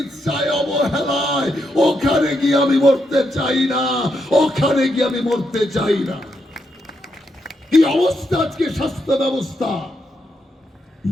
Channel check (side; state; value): both; normal; correlation 0.81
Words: অবহেলায়। ওখানে গিয়ে আমি মরতে চাই না, ওখানে গিয়ে আমি মরতে চাই না। কি অবস্থা আজকে স্বাস্থ্য ব্যবস্থা!